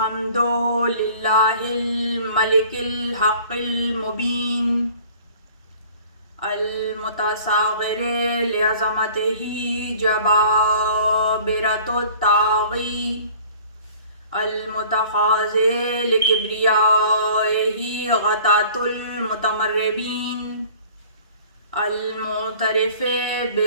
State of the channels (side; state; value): both; inverted; correlation -0.49